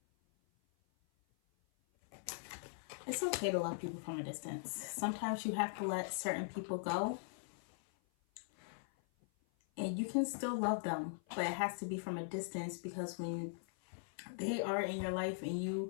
It's okay to love people from a distance. Sometimes you have to let certain people go. And you can still love them, but it has to be from a distance, because when they are in your life and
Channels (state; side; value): silent; right; 51 dB below the other